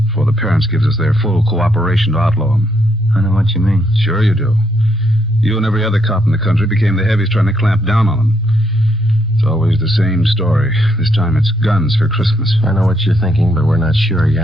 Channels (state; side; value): normal; both; correlation 0.74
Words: before the parents gives us their full cooperation to outlaw them. I know what you mean. Sure you do. You and every other cop in the country became the heavies trying to clamp down on them. It's always the same story. This time it's guns for Christmas. I know what you're thinking, but we're not sure